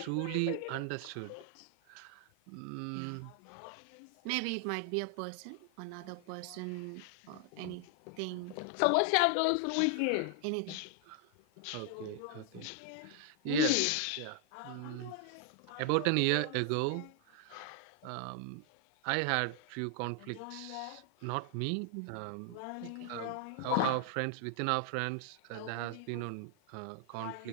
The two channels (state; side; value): different; both; correlation 0.00